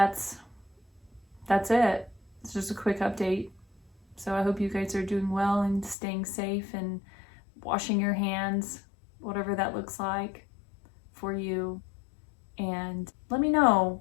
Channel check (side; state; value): right; drops out; at 6.0 s